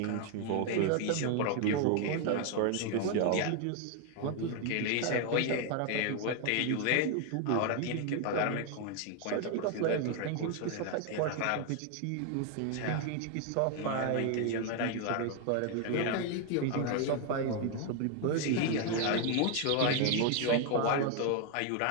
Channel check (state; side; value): different; both; correlation 0.01